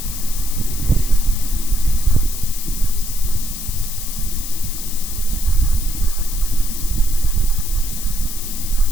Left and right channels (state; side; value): noise; left; hiss, 8 dB below the sound